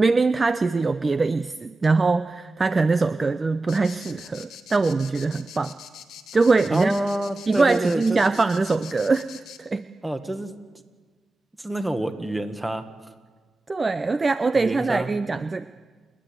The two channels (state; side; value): quieter; left; 3.1 dB